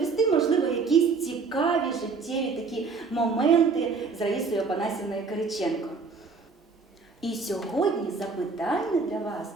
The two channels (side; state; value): left; quieter; 4.6 dB